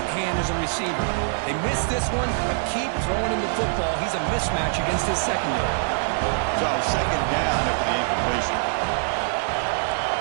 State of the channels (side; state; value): left; silent; 63 dB below the other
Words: hand as a receiver. They missed this one, but keep throwing him the football. He's a mismatch against his secondary. So second down after the incompletion.